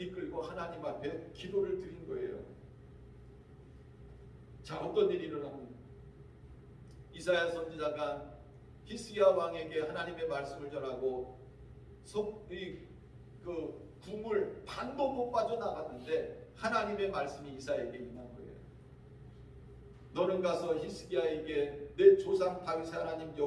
하나님 앞에 기도를 드린 거예요. 자, 어떤 일이 일어납니까? 이사야 선지자가 히스기야 왕에게 하나님의 말씀을 전하고 그 궁을 반도 못 빠져나갔는데 하나님의 말씀이 이사야에게 임한 거예요. 너는 가서 히스기야에게 내 조상 다윗의 하나님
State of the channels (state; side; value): identical; both; correlation 1.00